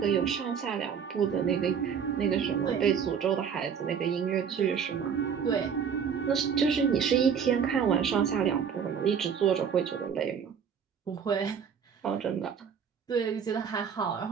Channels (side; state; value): left; quieter; 7.2 dB